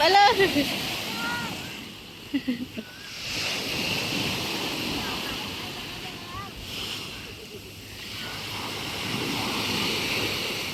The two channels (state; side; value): identical; both; correlation 1.00